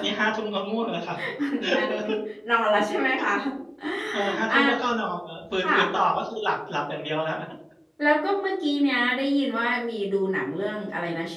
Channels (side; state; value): both; identical; correlation 1.00